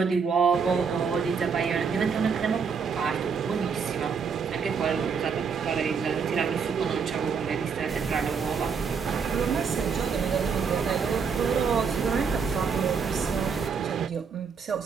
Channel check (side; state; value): left; quieter; 5.9 dB